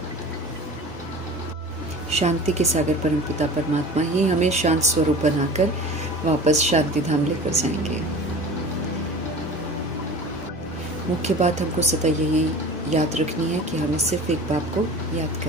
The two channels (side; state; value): both; normal; correlation 0.38